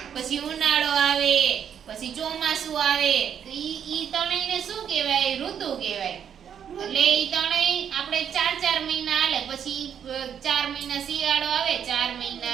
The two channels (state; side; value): quieter; left; 8.4 dB